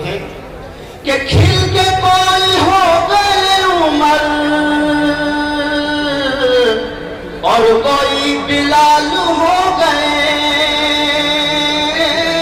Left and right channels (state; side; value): identical; both; correlation 1.00